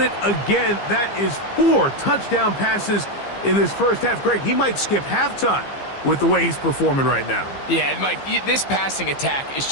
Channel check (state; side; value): late; right; 15 ms